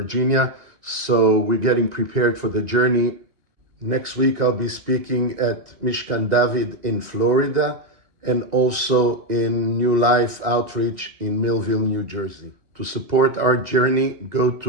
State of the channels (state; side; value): late; left; 1.9 ms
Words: So we're getting prepared for the journey. Next week I'll be speaking at Mishkan David in Florida, and also in New Life Outreach in Millville, New Jersey. To support our journey, go